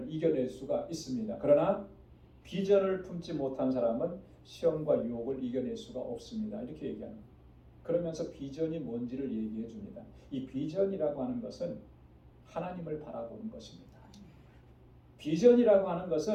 이겨낼 수가 있습니다. 그러나 비전을 품지 못한 사람은 시험과 유혹을 이겨낼 수가 없습니다. 이렇게 얘기하는 거예요. 그러면서 비전이 뭔지를 얘기해 줍니다. 이 비전이라고 하는 것은 하나님을 바라보는 것입니다. 비전이라고 하는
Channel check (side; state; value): both; identical; correlation 1.00